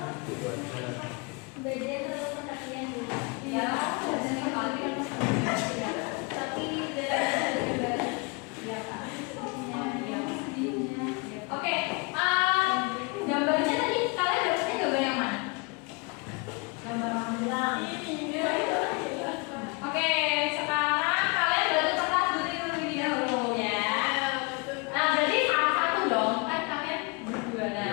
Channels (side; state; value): right; quieter; 30.1 dB